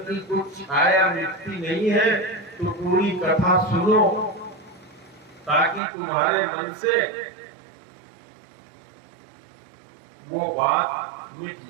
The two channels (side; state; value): left; drops out; at 5.8 s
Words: कुछ छाया मिटती नहीं है, तो पूरी कथा सुनो ताकि तुम्हारे मन से वो बात मिट